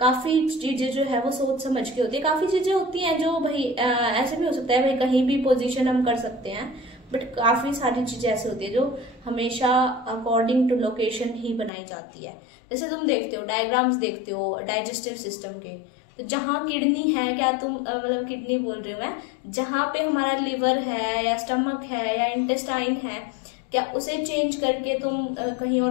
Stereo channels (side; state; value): right; drops out; at 11.7 s